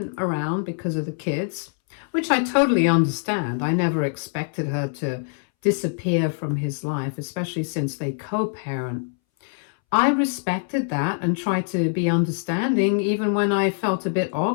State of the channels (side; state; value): right; silent; 63 dB below the other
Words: around because of the kids, which I totally understand. I never expected her to disappear from his life, especially since they co-parent. I respected that and tried to be understanding even when I felt a bit